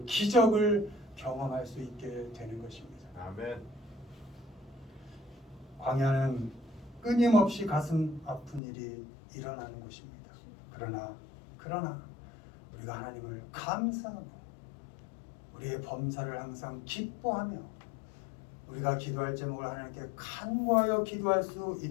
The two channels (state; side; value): drops out; right; at 8.6 s